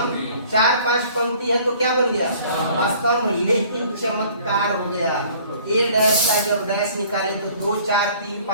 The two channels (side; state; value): both; inverted; correlation -0.53